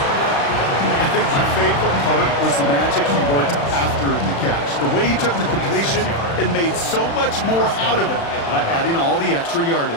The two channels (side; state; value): right; late; 35 ms